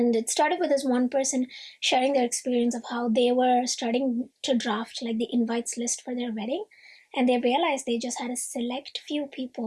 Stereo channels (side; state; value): both; identical; correlation 1.00